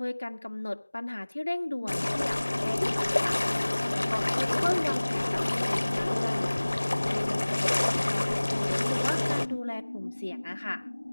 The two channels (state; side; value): inverted; both; correlation -1.00